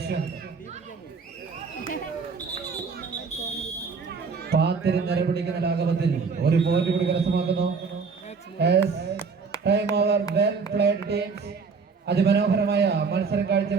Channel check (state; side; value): quieter; left; 5.1 dB